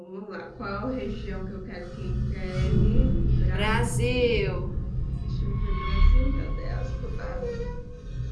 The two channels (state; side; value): identical; both; correlation 1.00